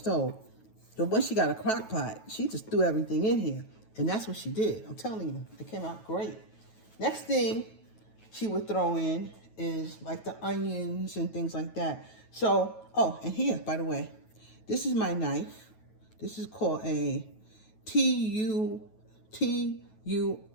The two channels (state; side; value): late; right; 9.3 ms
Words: But once she got a crock pot, she just threw everything in here. And that's what she did. I'm telling you, it came out great. Next thing she would throw in is like the onions and things like that. So, and here, by the way, this is my knife. This is called a TUO